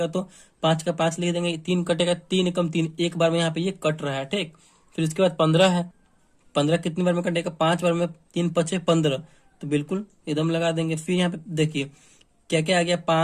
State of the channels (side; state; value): both; identical; correlation 1.00